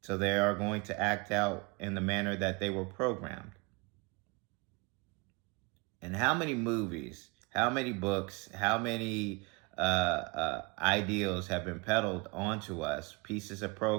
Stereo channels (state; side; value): quieter; left; 27.3 dB